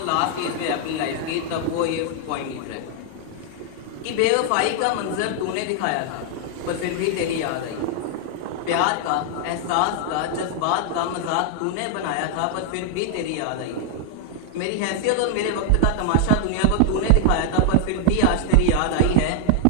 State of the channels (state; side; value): different; both; correlation 0.00